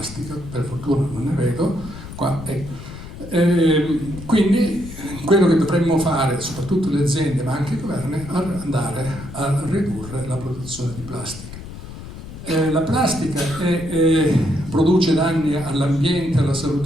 per fortuna non ne vedo qua. Quindi quello che dovremmo fare, soprattutto le aziende ma anche i governi, è andare a ridurre la produzione di plastica. La plastica produce danni all'ambiente, alla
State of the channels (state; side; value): noise; left; rumble, 13 dB below the sound